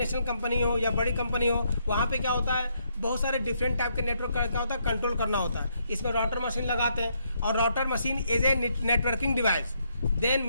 कंपनी हो या बड़ी कंपनी हो, वहाँ पे क्या होता है, बहुत सारे डिफरेंट टाइप के नेटवर्क का क्या होता है, कंट्रोल करना होता है। इसमें राउटर मशीन लगाते हैं, और router machine is a networking device, then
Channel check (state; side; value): inverted; both; correlation -0.75